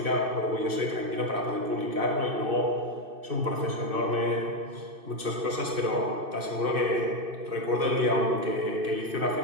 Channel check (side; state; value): left; late; 2.6 ms